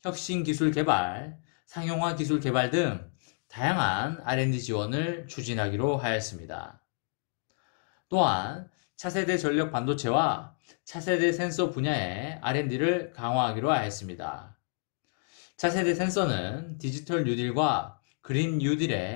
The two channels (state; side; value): silent; right; 58 dB below the other